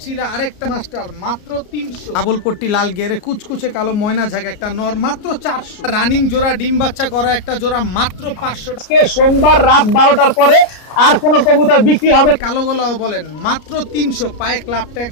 আরেকটা মাস্টার মাত্র 300, ডাবল পট্টি লাল গিয়ারে কুচকুচে কালো ময়না ঝাঁক একটা নর মাত্র 400, রানিং জোড়া ডিম বাচ্চা করা একটা জোড়া মাত্র 500। আজকে সোমবার রাত 12টার পরে আর কোনো কবুতর বিক্রি হবে কালো গলাও বলেন মাত্র 300, পায়ে ক্লাব ট্যাগ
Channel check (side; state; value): right; late; 33 ms